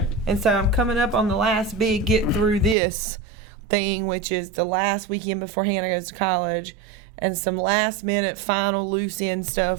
And so I'm coming up on the last big get through this thing, which is the last weekend before Hannah goes to college, and some last minute final loose end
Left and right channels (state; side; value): drops out; left; at 2.8 s